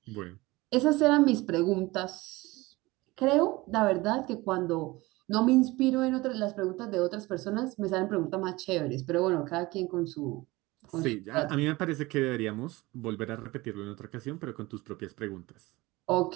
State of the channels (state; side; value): quieter; left; 21.2 dB